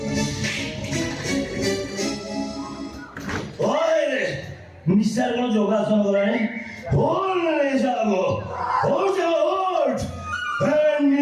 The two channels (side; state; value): both; identical; correlation 1.00